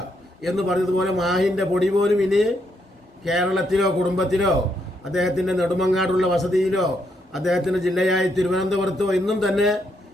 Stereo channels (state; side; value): normal; both; correlation 0.77